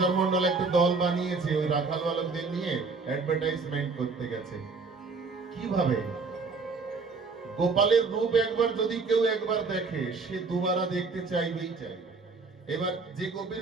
মন্ডল একটা দল বানিয়েছে, ওই রাখাল বালকদের নিয়ে অ্যাডভার্টাইজমেন্ট করতে গেছে। কিভাবে? গোপালের রূপ একবার যদি কেউ একবার দেখে, সে দুবারা দেখতে চাইবেই চাইবে। এবার যে গোপীর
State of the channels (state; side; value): quieter; left; 4.3 dB